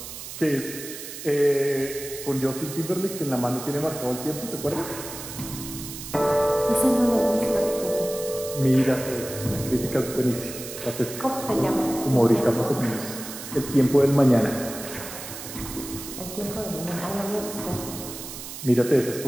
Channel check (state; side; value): noise; right; hiss, 10 dB below the sound